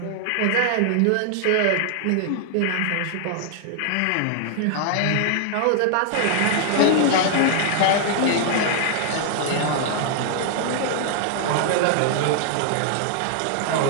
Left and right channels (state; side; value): different; both; correlation 0.00